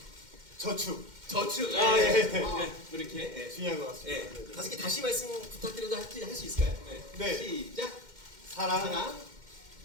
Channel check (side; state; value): left; late; 2.1 ms